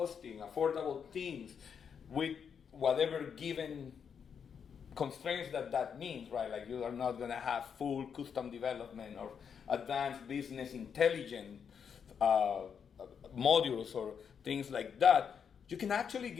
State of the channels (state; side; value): quieter; right; 7.1 dB